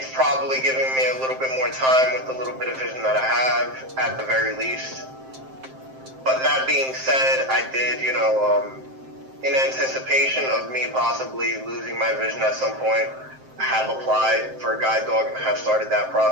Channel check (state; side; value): late; left; 7.6 ms